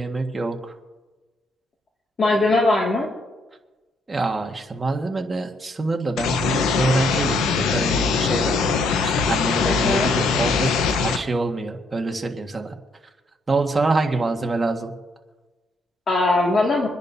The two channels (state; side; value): normal; both; correlation 0.72